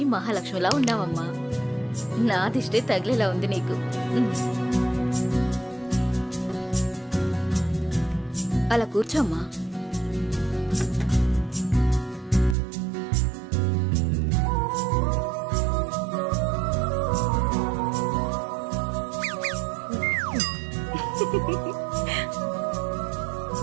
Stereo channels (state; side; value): drops out; left; at 12.6 s